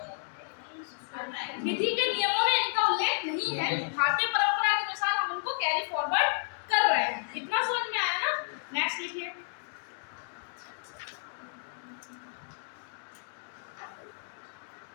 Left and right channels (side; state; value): right; silent; 57 dB below the other